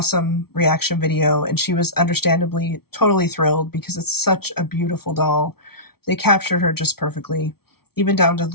reaction video, and she was understandably totally thrilled because it's such a beautiful doll. They captured her just perfectly, even down to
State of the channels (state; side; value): late; right; 0.95 ms